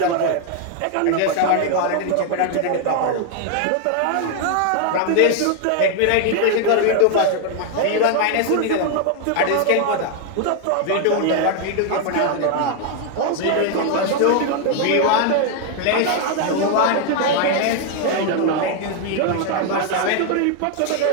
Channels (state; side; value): different; both; correlation 0.00